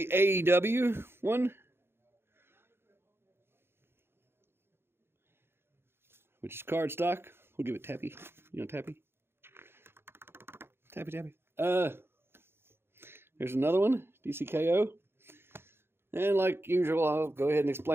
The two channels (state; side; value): late; left; 0.11 ms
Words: AEW one, which is cardstock. We'll give it tappy. Tappy. Tappy, tappy. There's another one, DCKO. And like usual, I'll go ahead and